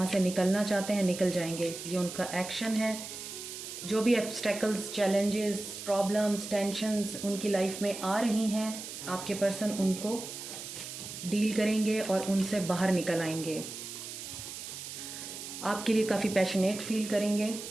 से निकलना चाहते हैं, निकल जाएंगे। ये उनका एक्शन है। जो भी ऑब्स्टेकल्स, चैलेंजेस, प्रॉब्लम्स, टेंशन्स उनकी लाइफ में आ रही हैं, आपके पर्सन उनको डील करेंगे और उनसे बाहर निकल आएंगे। आपके लिए काफ़ी पैशनेट फील करेंगे।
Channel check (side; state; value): right; noise; hiss, 9 dB below the sound